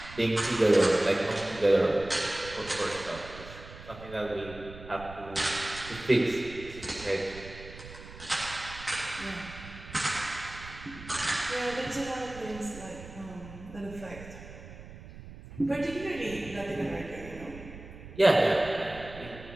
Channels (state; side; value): noise; right; rumble, 15 dB below the sound